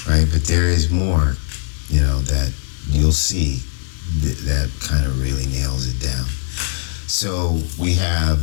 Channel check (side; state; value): right; silent; 55 dB below the other